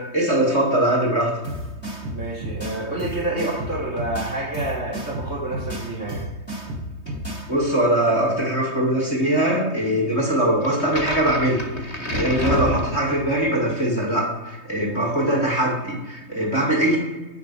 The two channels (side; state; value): right; late; 3.2 ms